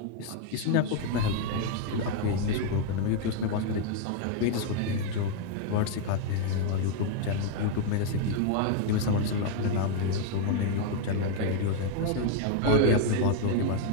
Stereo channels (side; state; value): both; different; correlation 0.00